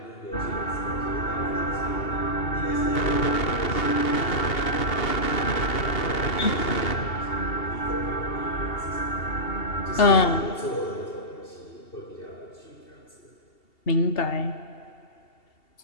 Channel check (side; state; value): right; late; 2.8 ms